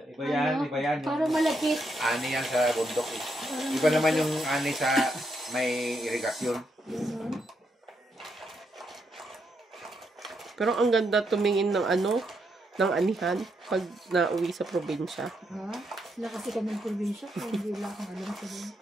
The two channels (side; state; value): both; normal; correlation 0.79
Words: Iba yan, iba yan. parang malakit. Ani yan sa bundok eh. Parang Iba naman yung ani sa may irigasyon. Ganun. Pero ang ganda tumingin ng ano, ng anihan pag nauwi sa probinsya. Ha? Sila kasi kami ng probinsya. Kaya hindi wala akong alam sa din.